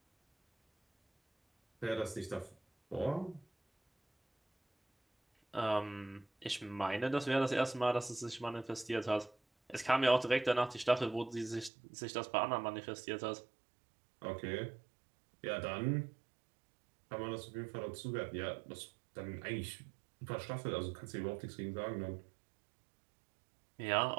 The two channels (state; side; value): drops out; left; at 11.7 s